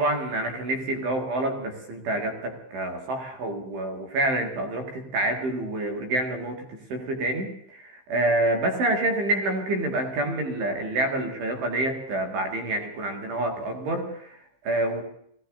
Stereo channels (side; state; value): left; late; 15 ms